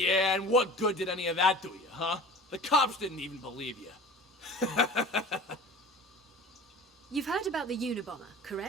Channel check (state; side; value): normal; both; correlation 0.40